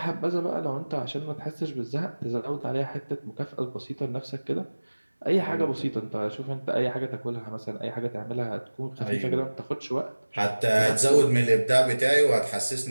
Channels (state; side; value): inverted; both; correlation -1.00